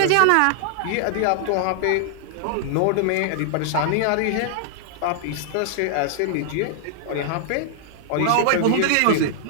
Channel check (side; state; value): both; different; correlation 0.00